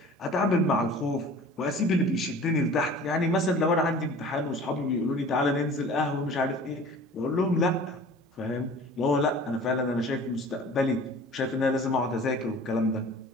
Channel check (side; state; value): both; normal; correlation 0.44